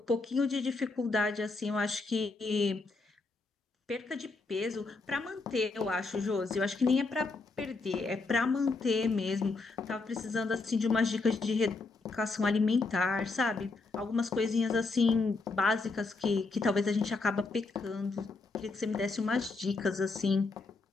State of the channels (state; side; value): quieter; right; 3.8 dB